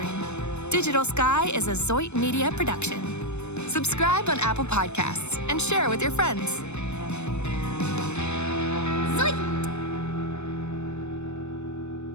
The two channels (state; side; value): late; right; 0.82 ms